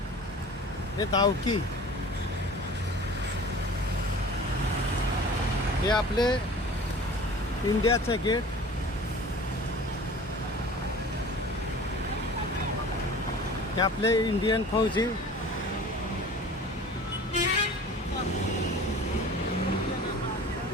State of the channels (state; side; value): normal; both; correlation 0.42